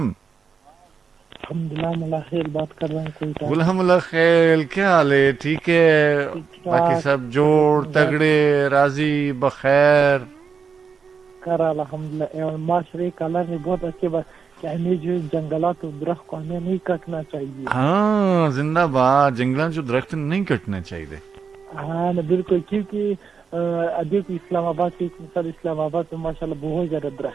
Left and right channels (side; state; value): left; quieter; 5.8 dB